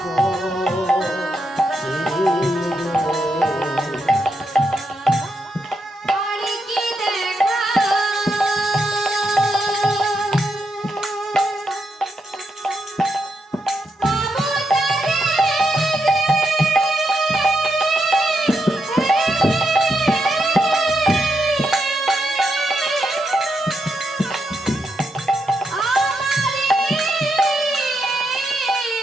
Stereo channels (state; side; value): normal; both; correlation 0.82